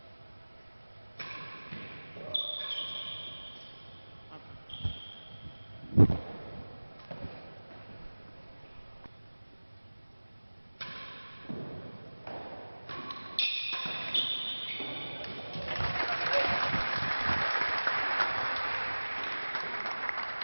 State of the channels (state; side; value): inverted; both; correlation -1.00